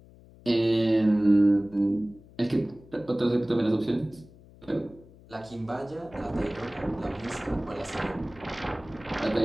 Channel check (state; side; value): noise; left; hum, 23 dB below the sound